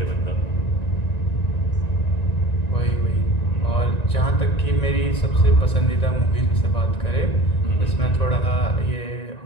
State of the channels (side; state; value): right; late; 1.9 ms